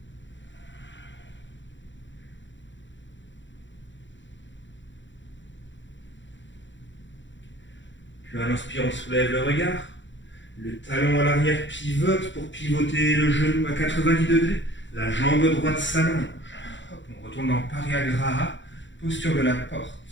Puis à l'inspire, on soulève le regard. Le talon à l'arrière pivote pour pivoter le genou à 90 degrés. La jambe droite s'allonge. On retourne dans Pariagraha, posture de la porte.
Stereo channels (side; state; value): right; late; 0.54 ms